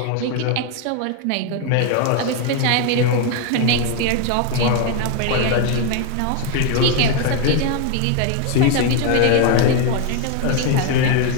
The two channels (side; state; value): both; different; correlation 0.01